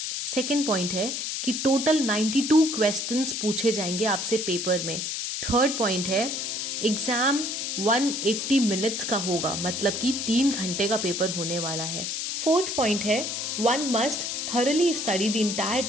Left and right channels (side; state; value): left; noise; hiss, 3 dB below the sound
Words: Second point है कि टोटल 92 क्वेश्चंस पूछे जाएंगे आपसे पेपर में। थर्ड पॉइंट है एग्जाम 180 मिनट्स का होगा, मतलब कि 3 घंटे का पेपर होने वाला है। फोर्थ पॉइंट है one must thoroughly study the